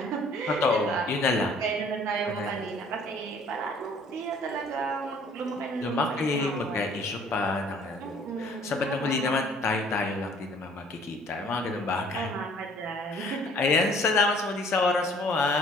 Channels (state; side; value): normal; both; correlation 0.56